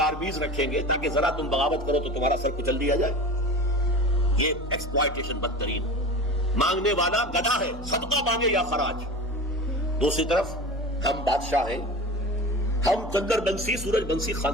رکھیں گے تاکہ ذرا تم بغاوت کرو تو تمہارا سر کچل دیا جائے. یہ ایکسپلائٹیشن بدترین. مانگنے والا گدھا ہے، صدقہ مانگے یا خراج. دوسری طرف ہم بادشاہ ہیں، ہم چندر بنسی سورج بنسی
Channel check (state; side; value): normal; both; correlation 0.33